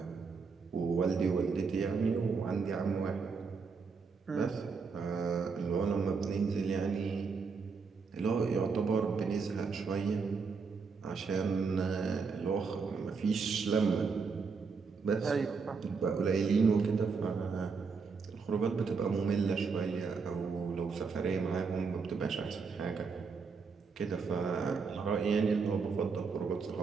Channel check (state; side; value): quieter; left; 5.1 dB